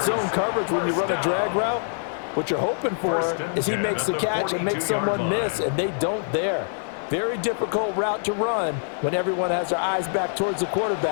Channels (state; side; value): silent; right; 58 dB below the other